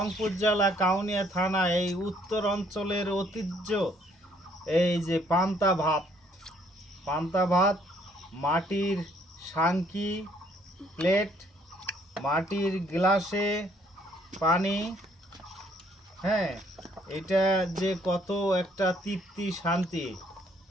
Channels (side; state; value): both; normal; correlation 0.65